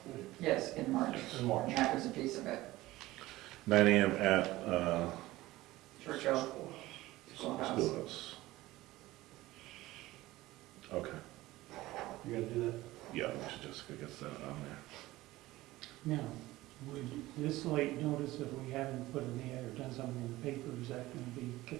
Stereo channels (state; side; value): quieter; left; 17.7 dB